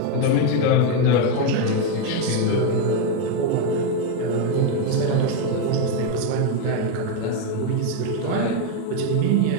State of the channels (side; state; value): both; different; correlation 0.02